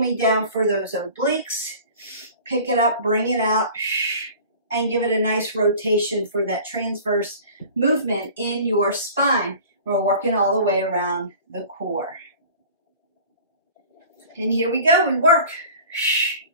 down for those obliques. Pick it up, bring it out, and give it a nice rotation for that transverse movement in your spine. We're working all the way around the core. And here we go, we work.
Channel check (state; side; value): inverted; both; correlation -0.43